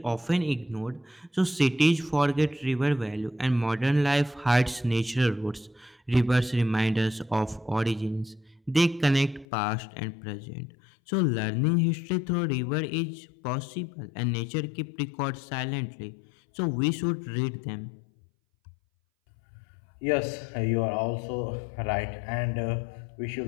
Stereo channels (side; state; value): right; drops out; at 9.5 s